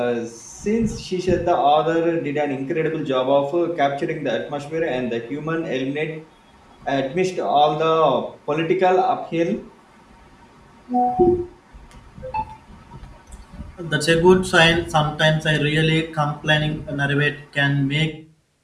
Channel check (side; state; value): both; identical; correlation 1.00